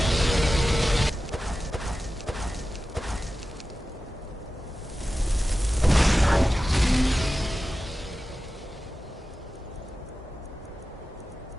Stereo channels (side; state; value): both; normal; correlation 0.94